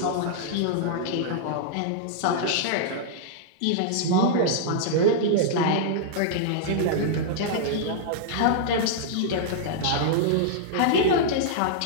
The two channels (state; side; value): different; both; correlation -0.02